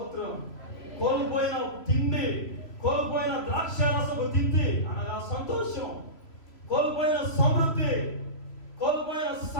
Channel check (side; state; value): right; late; 3.0 ms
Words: కోల్పోయిన తిండి, కోల్పోయిన ద్రాక్షారసపు తిండి అనగా సంతోషం, కోల్పోయిన సమృద్ధి, కోల్పోయిన